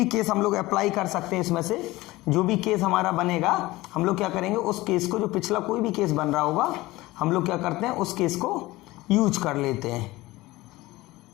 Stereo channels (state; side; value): quieter; right; 19.1 dB